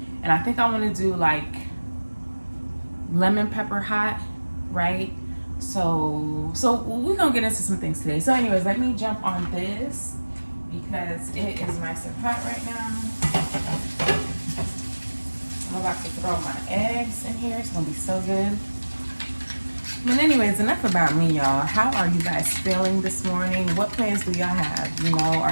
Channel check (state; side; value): inverted; both; correlation -1.00